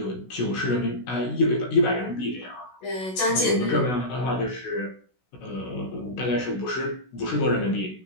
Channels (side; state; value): right; late; 16 ms